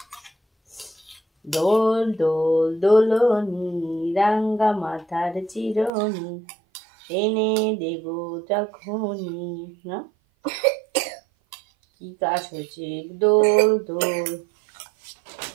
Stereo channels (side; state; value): left; drops out; at 5.9 s